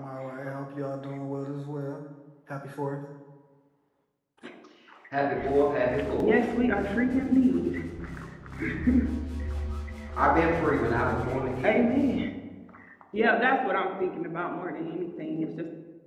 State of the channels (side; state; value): both; identical; correlation 1.00